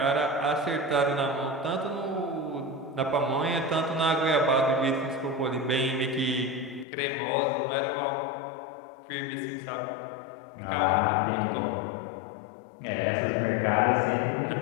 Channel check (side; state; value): right; drops out; at 6.9 s